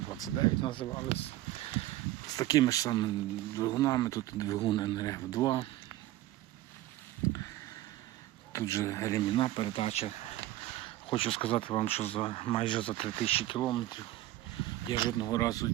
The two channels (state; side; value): quieter; left; 15.3 dB